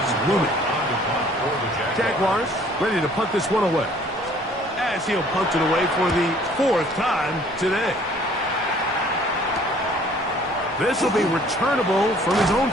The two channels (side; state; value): both; normal; correlation 0.56